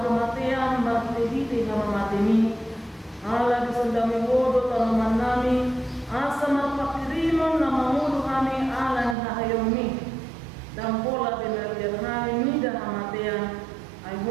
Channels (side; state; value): left; drops out; at 9.2 s